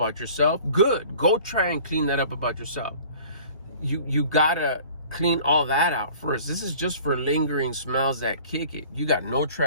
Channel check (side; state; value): both; inverted; correlation -0.47